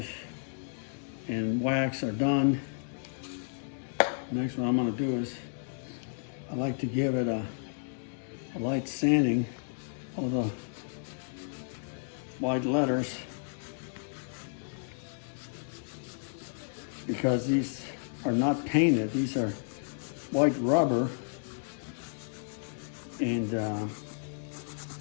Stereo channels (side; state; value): right; silent; digital silence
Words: and wax are done. Next one I'm gonna do is, I like to give it a light sanding of the white letters, because these are not painted, these are white rubber, and